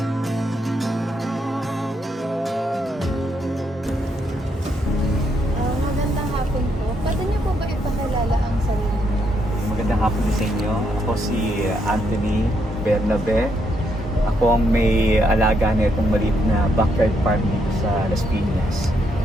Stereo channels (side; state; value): both; normal; correlation 0.76